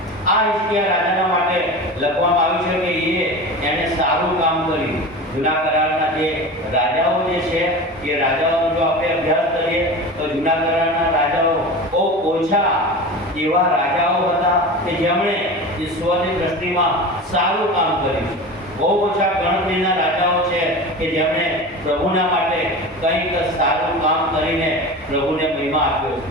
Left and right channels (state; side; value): normal; both; correlation 0.31